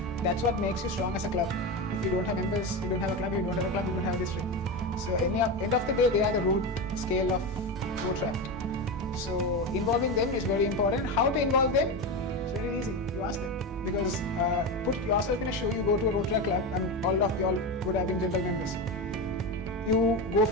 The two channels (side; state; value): both; normal; correlation 0.18